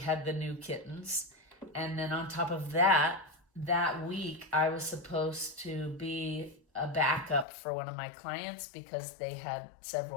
the new kittens. And then on top of that, that week, I was supposed to be a backup for one of my clients because they had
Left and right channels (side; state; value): right; drops out; at 7.5 s